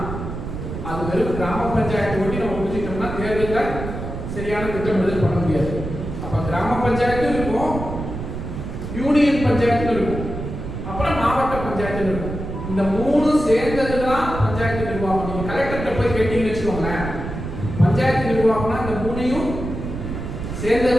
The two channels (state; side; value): noise; right; rumble, 7 dB below the sound